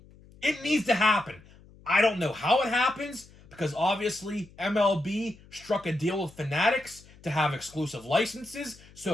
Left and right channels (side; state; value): left; noise; hum, 24 dB below the sound